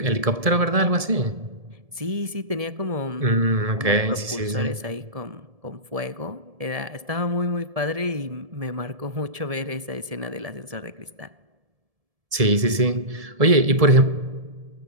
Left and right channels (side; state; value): left; late; 1.7 ms